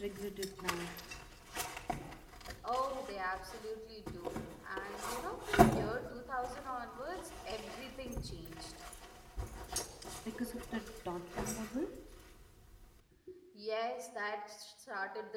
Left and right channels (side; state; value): both; identical; correlation 1.00